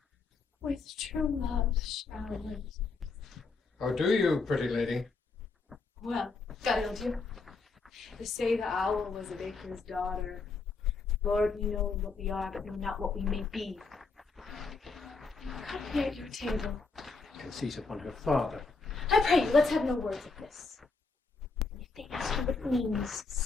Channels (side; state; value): right; quieter; 4.2 dB